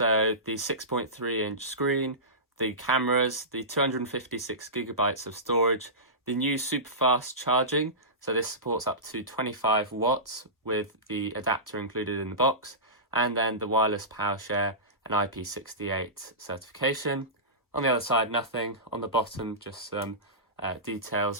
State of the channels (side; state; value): both; normal; correlation -0.20